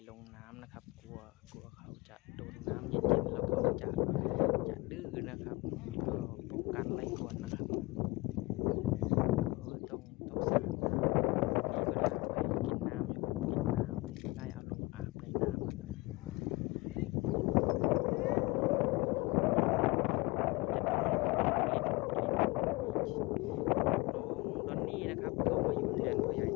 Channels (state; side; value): quieter; right; 23.3 dB